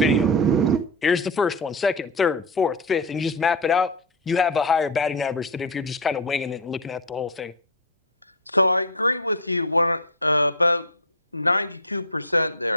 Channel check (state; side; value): normal; both; correlation 0.01